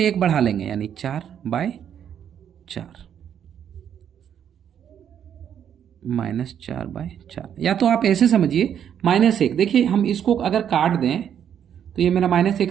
1 बढ़ा लेंगे, यानी 4/4 -4/4। या तो आप ऐसे समझिए -1, देखिए हम इसको अगर काट दें तो ये मेरा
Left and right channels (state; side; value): quieter; left; 9.0 dB